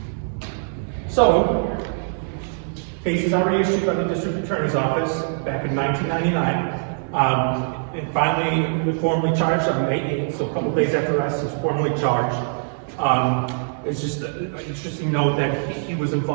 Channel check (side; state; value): left; silent; 64 dB below the other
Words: So, case is already issued by the district attorney's office back in 1999. And finally, we formally charged on May 8th, so a couple days after arrest, he was formally charged. It's just an interesting note that he was